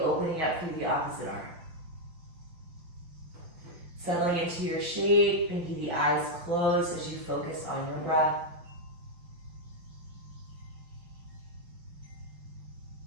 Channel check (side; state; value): left; late; 6.0 ms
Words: up through the opposite arm. Settling into your shape, maybe the eyes closed as you focus on your breath.